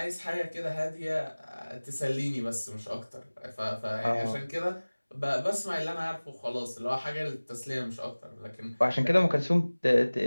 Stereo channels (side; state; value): both; inverted; correlation -1.00